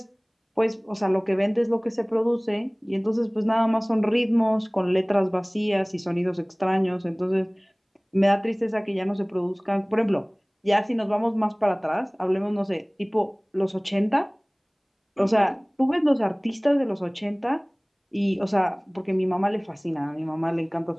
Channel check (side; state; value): both; identical; correlation 1.00